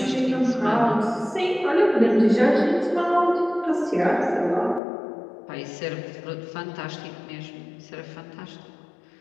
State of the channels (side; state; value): right; drops out; at 4.8 s